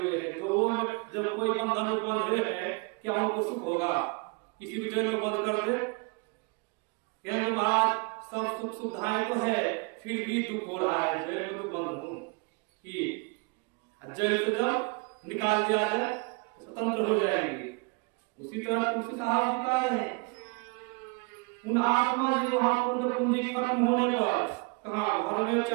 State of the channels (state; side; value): quieter; left; 29.7 dB